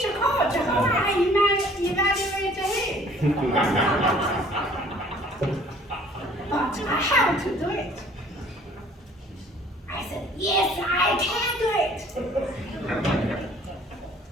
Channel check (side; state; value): both; normal; correlation 0.55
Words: coach. How I evaluate him? But I have to do it. I said, yes, I can do it.